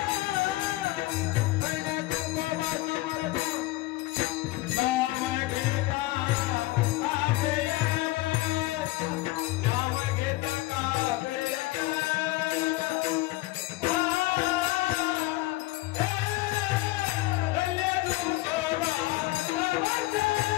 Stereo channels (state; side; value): quieter; right; 19.4 dB